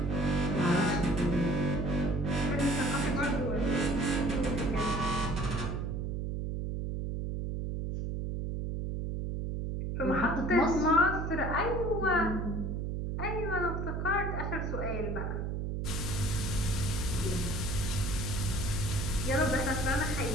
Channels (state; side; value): noise; right; hum, 2 dB below the sound